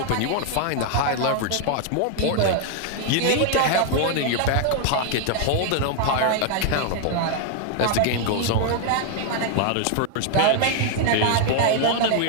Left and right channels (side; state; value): both; different; correlation 0.00